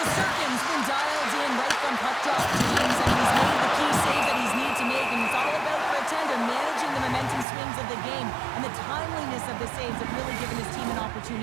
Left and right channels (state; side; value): drops out; left; at 7.5 s